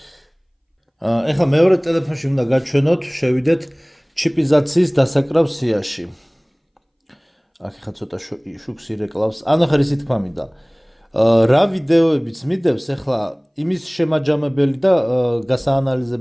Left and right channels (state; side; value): identical; both; correlation 1.00